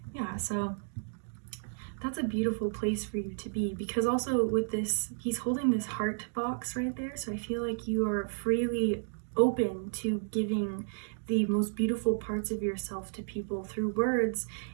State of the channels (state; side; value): silent; left; digital silence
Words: Yeah, so that's a beautiful place for you to be, because also with this, he's holding this heart box right there, so I feel like you are freely open to giving the most beautiful parts of yourself to people through words